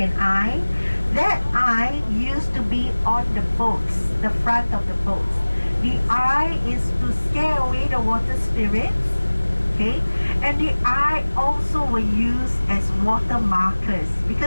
eye? That eye used to be on the boats, the front of the boats. The eye is to scare away the water spirits. Okay, and the eye also were used as water markers,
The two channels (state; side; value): inverted; both; correlation -1.00